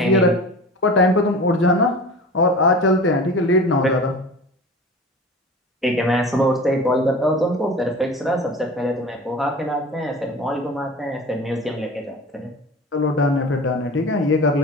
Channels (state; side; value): normal; both; correlation 0.37